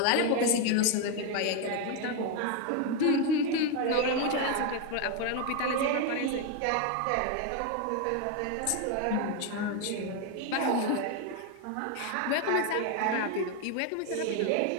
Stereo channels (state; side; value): different; both; correlation 0.02